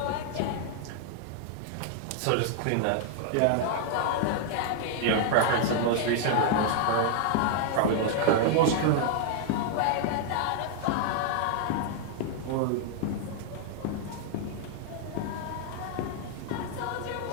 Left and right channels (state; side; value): different; both; correlation -0.01